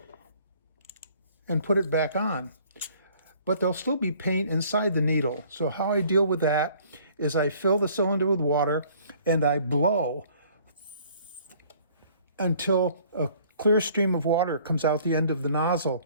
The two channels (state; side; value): inverted; both; correlation -0.57